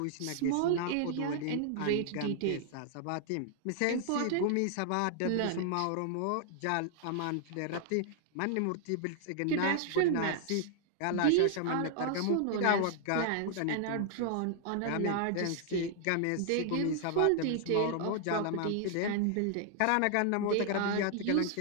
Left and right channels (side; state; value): both; different; correlation -0.01